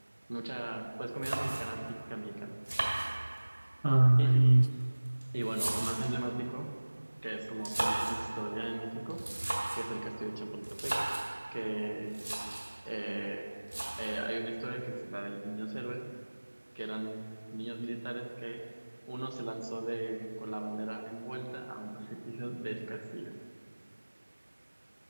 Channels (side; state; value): both; inverted; correlation -1.00